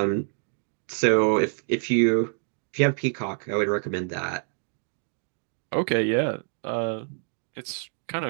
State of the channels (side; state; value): left; silent; digital silence